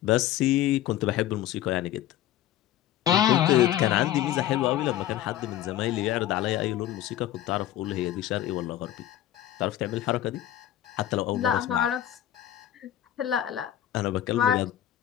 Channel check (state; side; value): quieter; right; 12.4 dB